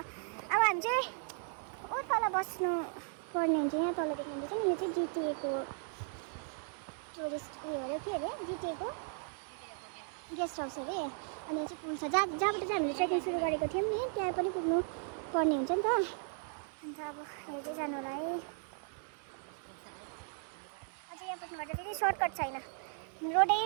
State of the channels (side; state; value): left; silent; 54 dB below the other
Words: हामी चाहिँ ओ तल बस्नु पर्ने हुन्छ। यहाँ तल देख्नुहुन्छ नि, यो चाहिँ जिटिएको टुरिस्ट उयो अरे, के अरे जिटिएको गेस्ट हाउस अरे। अनि यहाँ चाहिँ पुल छ जहाँबाट चाहिँ हामीले ट्रेकिङ सुरु गरेको थियौँ नि, त्यहाँ पनि पुग्नु पर्ने हुन्छ नि त। अन्त अब हेर्दै जानु होला है। अझै यहाँ पुग्नुपर्छ, फेरि सर्टकट छैन, रोड